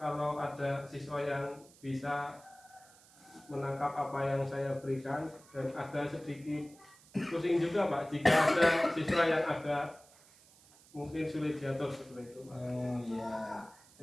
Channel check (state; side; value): noise; right; hiss, 25 dB below the sound